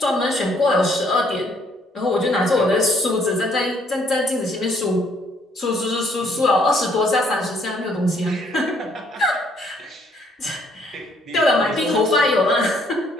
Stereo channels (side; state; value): both; normal; correlation 0.66